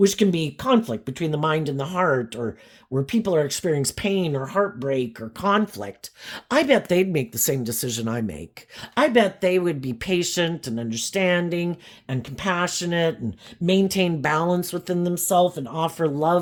can be conflict between the mind and the heart, or where people are experiencing pain or heartbreak or conflict. I bet they'd make the same decision I make. I bet they would be patient and understanding and compassionate and maintain balance within themselves and offer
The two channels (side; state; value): both; identical; correlation 1.00